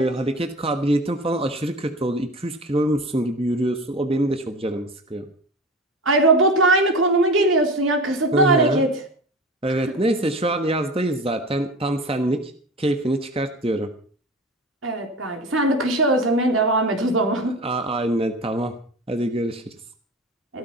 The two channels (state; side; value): normal; both; correlation 0.32